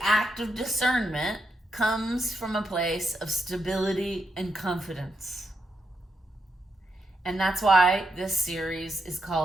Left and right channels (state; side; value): normal; both; correlation 0.82